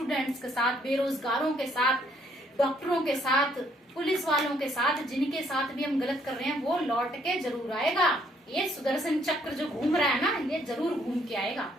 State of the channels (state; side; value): normal; both; correlation 0.67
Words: के साथ, बेरोजगारों के साथ, डॉक्टरों के साथ, पुलिस वालों के साथ, जिनके साथ भी हम गलत कर रहे हैं वो लौट के जरूर आएगा। ये सुदर्शन चक्र जो घूम रहा है ना, ये जरूर घूम के आएगा।